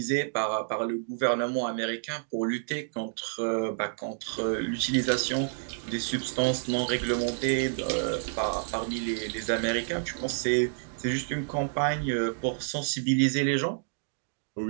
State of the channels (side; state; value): left; silent; digital silence